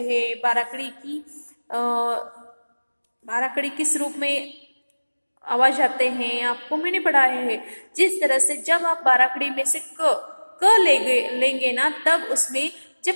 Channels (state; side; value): inverted; both; correlation -1.00